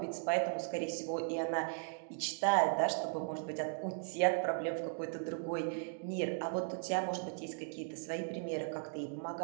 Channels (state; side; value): silent; left; digital silence